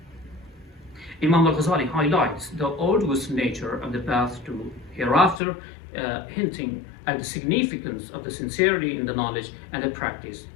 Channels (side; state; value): right; drops out; at 5.4 s